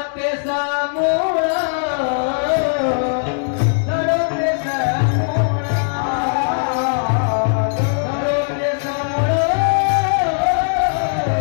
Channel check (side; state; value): right; silent; digital silence